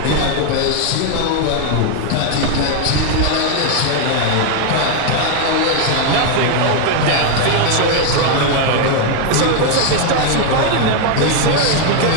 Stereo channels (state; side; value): different; both; correlation 0.01